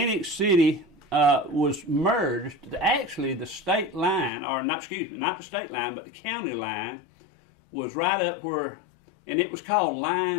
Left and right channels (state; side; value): drops out; right; at 4.3 s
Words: City was merged. Actually, the state line, or not the state line, but the county line was right up where, and it was called